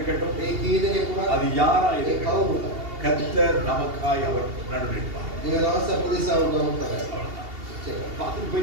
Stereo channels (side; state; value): left; late; 2.8 ms